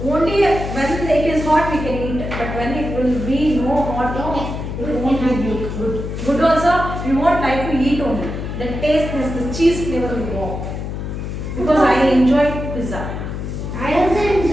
only when it is hot we can eat. But when it will be no hot, no, it won't be good. Good also, we won't like to eat only. The taste is the cheese flavor will go. Because I enjoy pizza. I also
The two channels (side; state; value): left; noise; hum, 6 dB below the sound